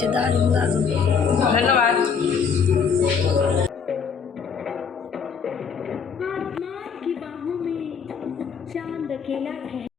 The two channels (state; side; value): quieter; right; 6.3 dB